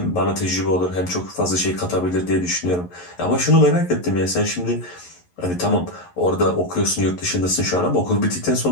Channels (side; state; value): right; late; 11 ms